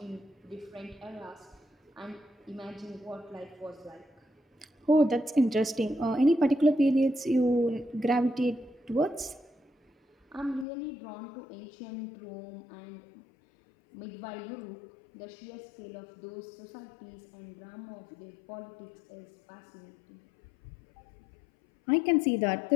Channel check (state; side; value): drops out; right; at 10.7 s